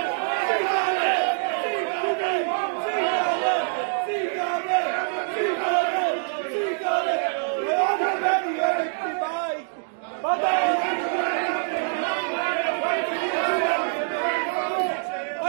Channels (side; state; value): left; silent; digital silence